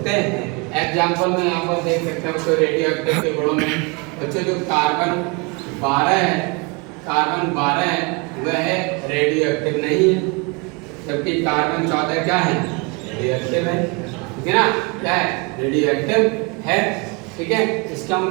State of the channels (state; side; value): quieter; left; 29.3 dB